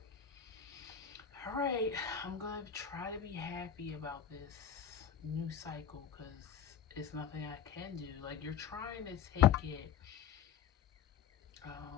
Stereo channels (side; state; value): right; quieter; 8.4 dB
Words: all right, I'm going to try to be happy about this new cycle because it's nothing I can do. Like, you're trying to take it,